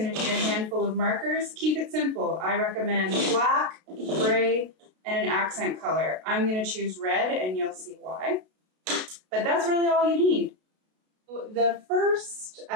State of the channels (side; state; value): left; late; 32 ms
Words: to need a handful of markers. Keep it simple. I recommend black, gray, and an accent color. I'm going to choose red, and you'll see why. But that's really all you need. The first